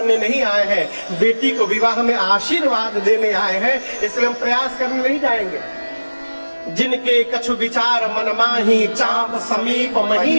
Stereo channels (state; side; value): inverted; both; correlation -1.00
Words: नहीं आए हैं, बेटी को विवाह में आशीर्वाद देने आए हैं, इसलिए हम प्रयास करने नहीं जाएंगे। जिनके कछु विचार मन माही, चाप समीप